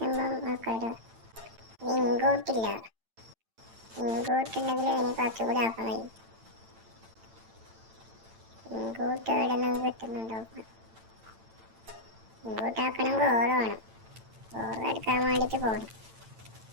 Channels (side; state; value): left; late; 8.9 ms